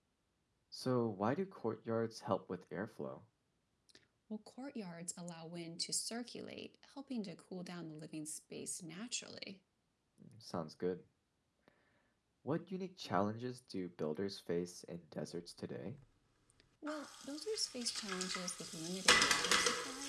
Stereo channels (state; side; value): identical; both; correlation 1.00